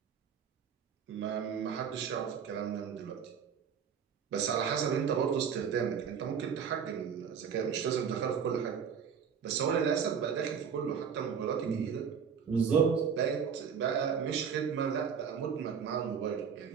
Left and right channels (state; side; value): quieter; left; 7.1 dB